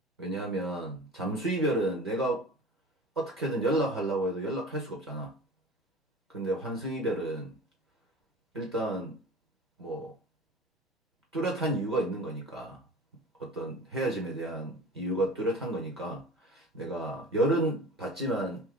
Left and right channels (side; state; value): both; normal; correlation 0.38